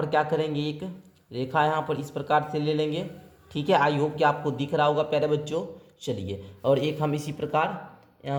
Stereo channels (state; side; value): identical; both; correlation 1.00